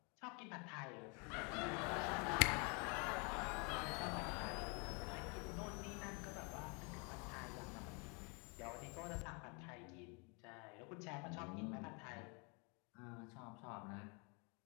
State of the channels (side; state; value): right; quieter; 33.2 dB